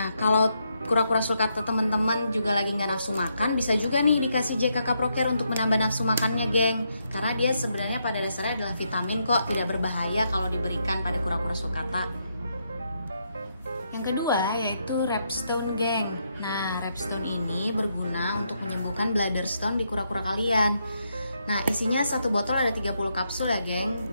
kalau kura-kura sulcata teman-teman juga lagi nggak nafsu makan, bisa juga nih dikasih JKK Procare untuk menambah nafsu makannya, geng. Karena dia sebenarnya pada dasarnya adalah vitamin kok, tidak berbahaya kalau diberikan pada kura-kura sulcata. Yang kedua yaitu Repstone, geng. Nah, Repstone ini berguna untuk menyembuhkan bladder stone di kura-kura kalian. Nah, isinya satu botol ada 30 kapsul ya, geng.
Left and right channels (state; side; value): inverted; both; correlation -0.79